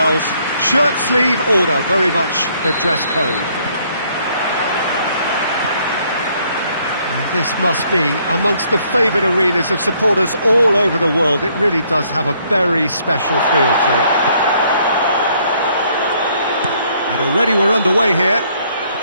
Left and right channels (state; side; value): inverted; both; correlation -0.67